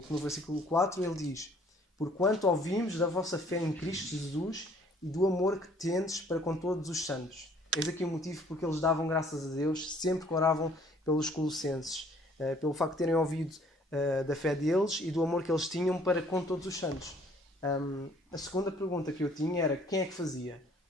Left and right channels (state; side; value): normal; both; correlation 0.59